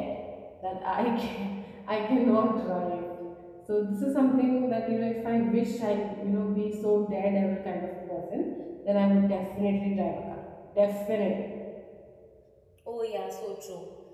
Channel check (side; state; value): both; identical; correlation 1.00